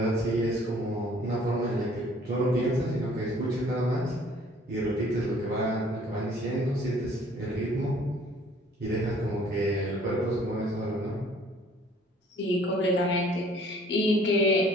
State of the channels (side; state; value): both; normal; correlation 0.56